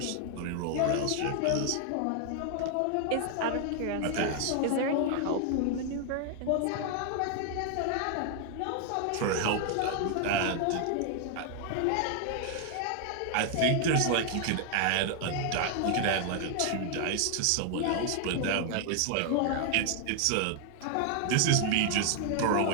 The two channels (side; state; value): both; different; correlation 0.00